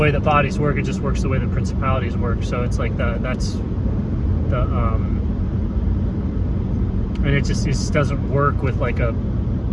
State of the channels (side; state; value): both; identical; correlation 1.00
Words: that bodies work. It just works the way that principalities work. So it's like and it just doesn't work with